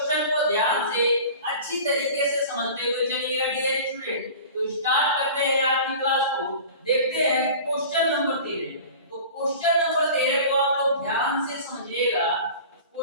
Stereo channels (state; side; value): inverted; both; correlation -0.39